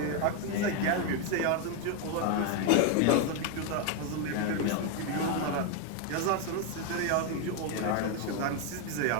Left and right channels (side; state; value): both; different; correlation 0.01